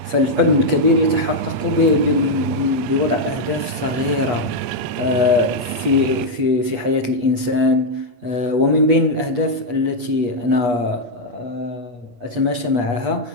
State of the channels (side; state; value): left; late; 8.3 ms